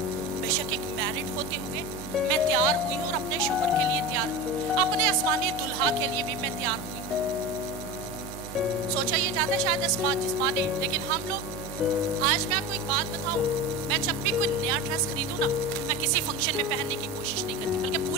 बेशक एक मैरिड होते हुए मैं तैयार हुई हूँ, और अपने शोहर के लिए तैयार हुई, अपने आसमानी दुल्हा के लिए भी मैं तैयार हुई। सोचा ये जाता है शायद जिस्मानी, लेकिन हम लोग, आज मैं आपको एक बात बताऊं, मैं जब भी कोई नया ड्रेस खरीदूं ना, मैं किसी फंक्शन में पहनने की कोशिश नहीं करती, बल्कि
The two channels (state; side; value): normal; both; correlation 0.28